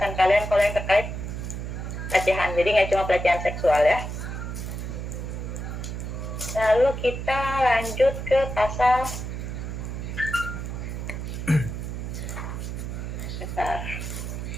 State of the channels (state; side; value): noise; right; hum, 5 dB below the sound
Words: kalian kalau yang terkait pelecehan. Jadi nggak cuma pelecehan seksual ya. Lalu kita lanjut ke pasal besar.